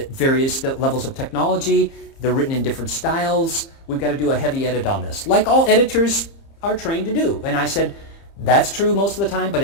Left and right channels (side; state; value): right; late; 30 ms